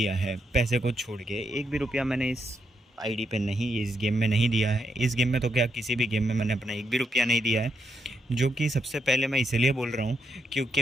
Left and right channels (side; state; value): both; normal; correlation 0.80